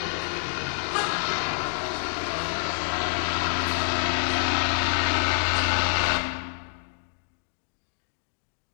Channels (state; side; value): silent; right; digital silence